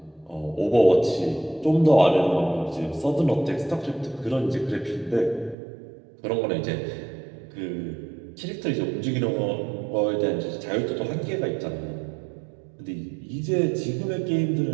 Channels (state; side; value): drops out; left; at 5.6 s